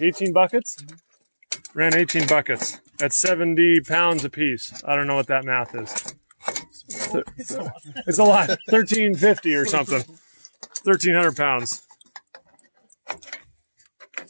buckets? Mm-hmm. Ran 18 buckets. That's 70 pounds a piece. I don't know what that math is. It's a lot. It's a lot. 1,350 or something. 1,300 pounds.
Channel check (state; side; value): inverted; both; correlation -1.00